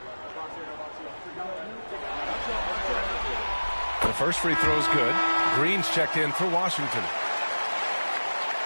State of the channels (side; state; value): both; inverted; correlation -1.00